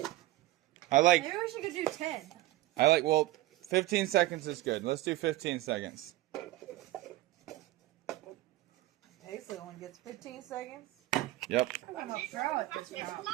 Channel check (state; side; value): quieter; left; 17.1 dB